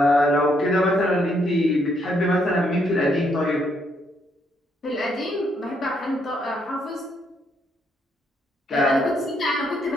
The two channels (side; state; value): both; normal; correlation 0.73